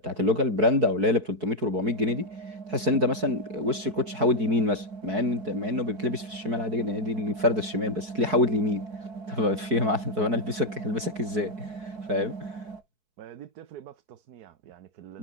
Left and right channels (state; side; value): late; left; 4.6 ms